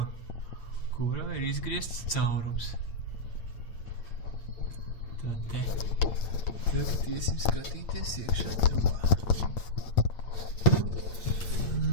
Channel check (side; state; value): right; late; 8.8 ms